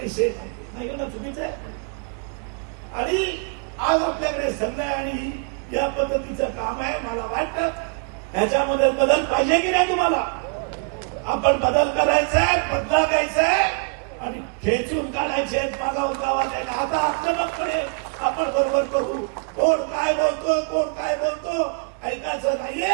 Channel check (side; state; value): left; quieter; 38.6 dB